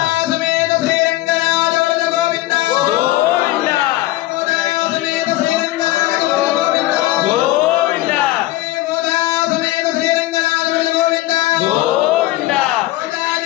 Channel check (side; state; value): right; quieter; 16.7 dB